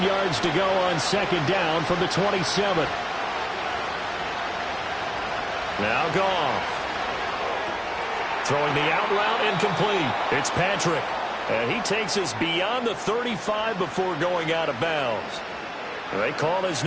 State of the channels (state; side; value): identical; both; correlation 1.00